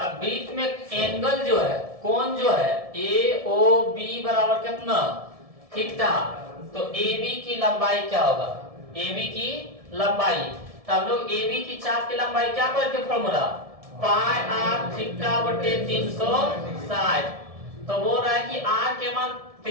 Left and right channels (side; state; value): left; late; 1.7 ms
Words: वृत्त में एंगल जो है, कोण जो है AOB बराबर कितना, थीटा। तो AB की लंबाई क्या होगा, AB की लंबाई। तो हम लोग AB की चाप की लंबाई क्या करके फॉर्मूला, पाई r थीटा बटे 360। तो बोल रहा है कि r के मान